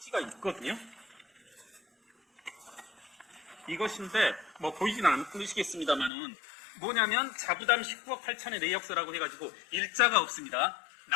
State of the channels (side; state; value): right; drops out; at 6.1 s